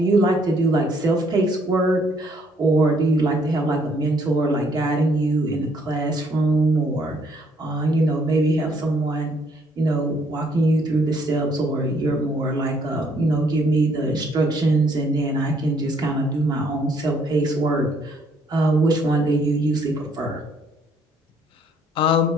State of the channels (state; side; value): normal; both; correlation 0.66